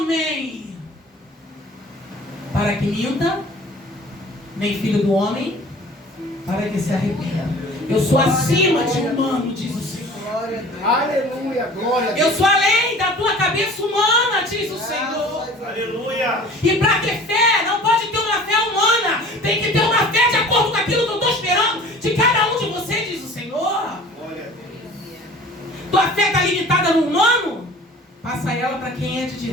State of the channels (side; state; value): both; normal; correlation 0.45